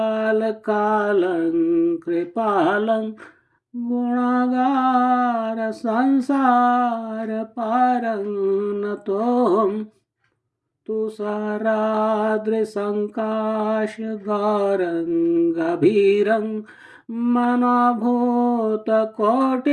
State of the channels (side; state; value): both; identical; correlation 1.00